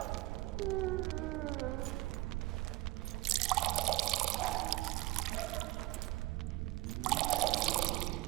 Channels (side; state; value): left; quieter; 19.2 dB